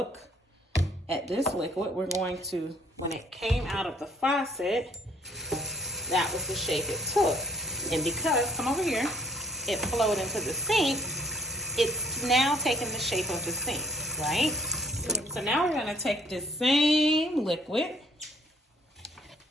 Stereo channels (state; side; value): normal; both; correlation 0.62